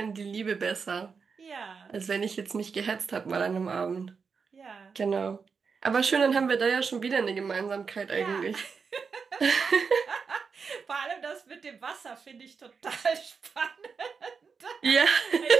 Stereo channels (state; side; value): quieter; left; 5.5 dB